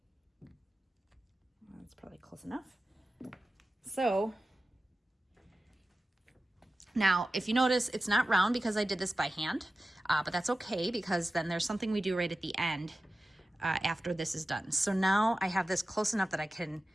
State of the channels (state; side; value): normal; both; correlation 0.95